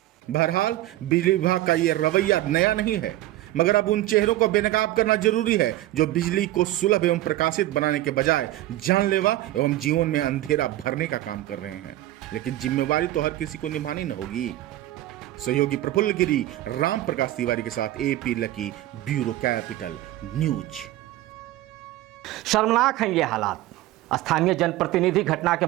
बहरहाल बिजली विभाग का ये रवैया नया नहीं है, मगर अब उन चेहरों को बेनकाब करना जरूरी है जो बिजली को सुलभ एवं प्रकाशित बनाने के बजाय जानलेवा एवं जीवन में अंधेरा भरने का काम कर रहे हैं। लेकिन जिम्मेवारी तो हर किसी को निभानी न होगी। सहयोगी प्रफुल्ल गिरी, राम प्रकाश तिवारी के साथ AP lucky, bureau capital news. शर्मनाक हैं ये हालात। स्थानीय जनप्रतिनिधि घटना के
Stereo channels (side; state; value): left; quieter; 15.4 dB